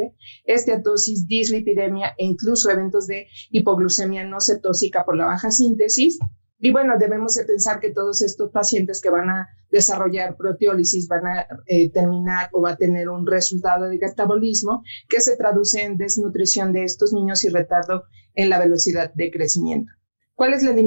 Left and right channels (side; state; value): both; inverted; correlation -1.00